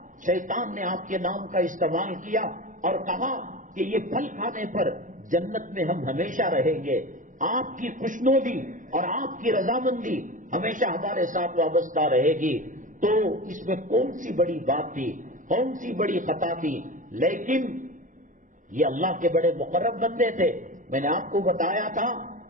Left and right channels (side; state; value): left; late; 0.38 ms